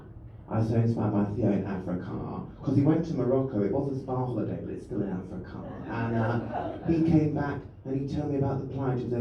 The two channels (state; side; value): identical; both; correlation 1.00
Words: I was so inspired by Theo in Africa, because he went to Morocco. It was a spa holiday, but it's still in Africa. And he came back and he told me about the plight of